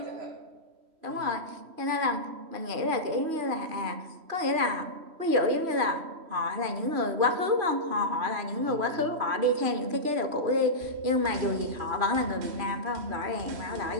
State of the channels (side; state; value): left; late; 3.0 ms